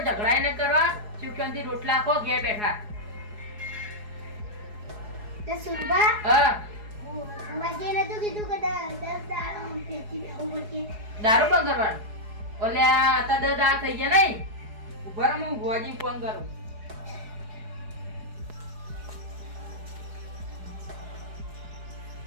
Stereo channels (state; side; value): late; left; 4.8 ms